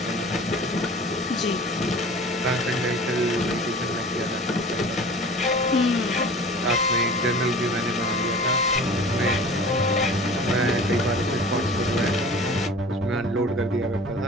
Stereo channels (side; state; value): both; normal; correlation 0.42